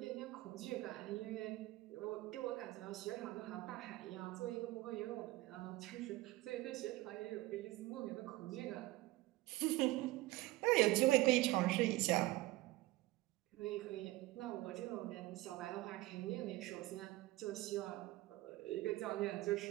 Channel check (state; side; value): quieter; left; 18.6 dB